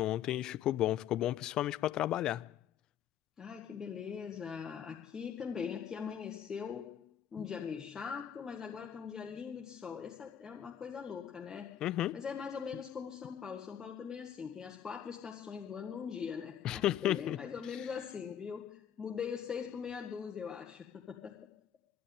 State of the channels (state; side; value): quieter; right; 9.7 dB